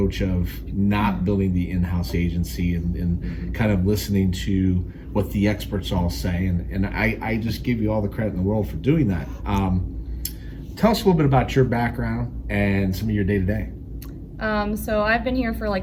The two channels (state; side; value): identical; both; correlation 1.00